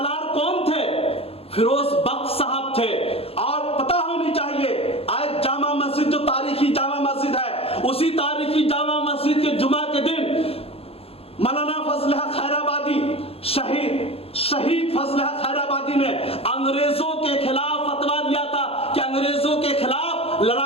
कौन थे? फिरोज बख्श साहब थे। और पता होनी चाहिए आज जामा मस्जिद जो तारीखी जामा मस्जिद है, उसी तारीखी जामा मस्जिद के जुमा के दिन मौलाना फजल हक खैराबादी शहीद फजल हक खैराबादी ने अंग्रेजों के खिलाफ फतवा दिया था कि अंग्रेजों के खिलाफ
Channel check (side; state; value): right; late; 0.28 ms